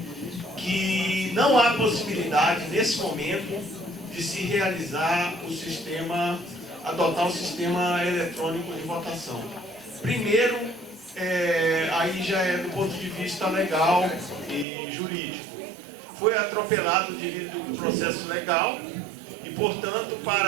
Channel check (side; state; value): left; drops out; at 14.7 s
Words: que não há possibilidade nesse momento de se realizar o sistema, adotar o sistema eletrônico de votação. Primeiro, aí já é do ponto de vista legal e jurídico. Foi atropelado devido ao processo legal e, portanto,